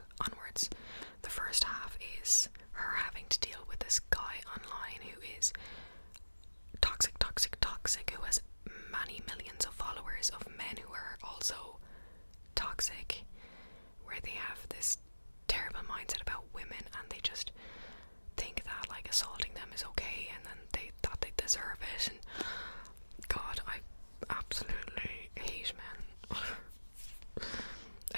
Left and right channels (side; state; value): both; inverted; correlation -1.00